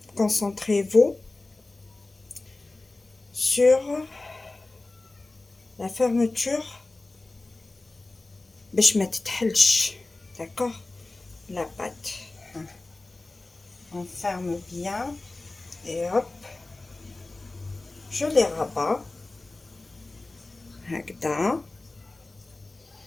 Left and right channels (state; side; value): quieter; right; 3.1 dB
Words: concentrez-vous sur la fermeture باش ما تتحلش. d'accord, la pâte, on ferme bien et hop, je les rabats هكذا,